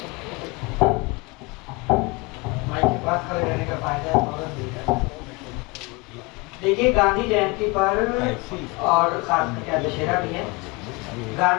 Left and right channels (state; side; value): quieter; right; 26.5 dB